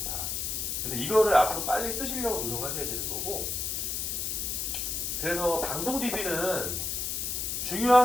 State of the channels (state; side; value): noise; left; hiss, 1 dB below the sound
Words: 근데 이거를 앞으로 빨리 쓰시려고 노력하셔야 되는 거고. 그래서 방송 DB는